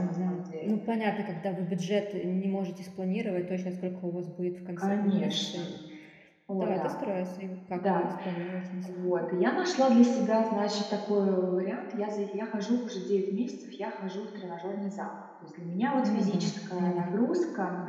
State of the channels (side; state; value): both; identical; correlation 1.00